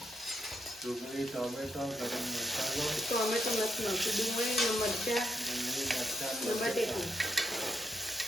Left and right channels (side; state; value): both; normal; correlation 0.79